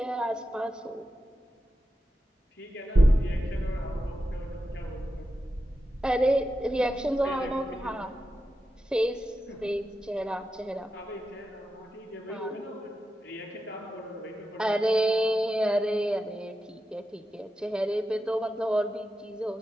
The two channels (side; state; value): both; normal; correlation 0.90